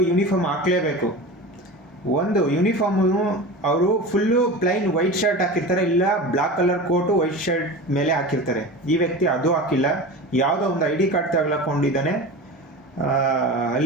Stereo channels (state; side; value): normal; both; correlation 0.30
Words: ಯೂನಿಫಾರ್ಮ್ ಹಾಕಲೇಬೇಕು. ಒಂದು ಯೂನಿಫಾರ್ಮು ಅವರು ಫುಲ್ಲು ಪ್ಲೈನ್ ವೈಟ್ ಶರ್ಟ್ ಹಾಕಿರ್ತಾರೆ, ಇಲ್ಲ black colour coat white shirt ಮೇಲೆ ಹಾಕಿರ್ತಾರೆ. ಈ ವ್ಯಕ್ತಿ ಅದು ಹಾಕಿಲ್ಲ, ಯಾವುದೋ ಒಂದು ID ಕಾರ್ಡ್ ತಗೊಳ್ಕೊಂಡಿದ್ದಾನೆ.